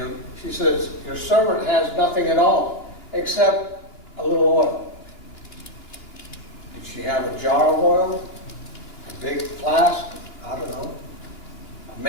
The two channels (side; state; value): right; late; 2.9 ms